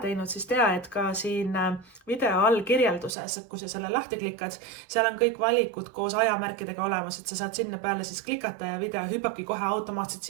teinud, siis tea, et ka siin video all kirjelduses, kui sa selle lahti klikkad, seal on kõik valikud koos ajamärkidega olemas, et sa saad sinna peale siis klikata ja video hüppabki kohe automaatselt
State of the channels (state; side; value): drops out; left; at 3.1 s